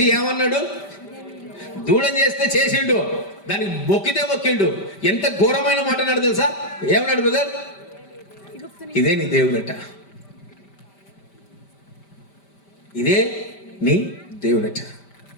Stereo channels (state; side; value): late; right; 5.1 ms